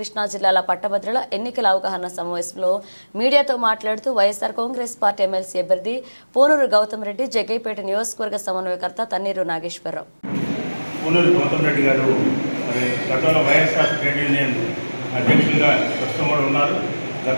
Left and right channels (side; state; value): both; inverted; correlation -1.00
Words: జిల్లాల పట్టభద్రుల ఎన్నికల అవగాహన సమావేశంలో మీడియాతో మాట్లాడుతూ వైఎస్ఆర్ కాంగ్రెస్ పార్టీ ఎమ్మెల్సీ అభ్యర్థి పూనూరు గౌతమ్ రెడ్డి జగ్గైపేట నియోజకవర్గ సమన్వయకర్త తన్నీరు నాగేశ్వరరావు. పూనూరు గౌతమ్ రెడ్డి గారు గతంలో వైఎస్ఆర్ ట్రేడ్ యూనియన్ అధ్యక్షులుగా ప్రస్తుతం కూడా ఉన్నారు.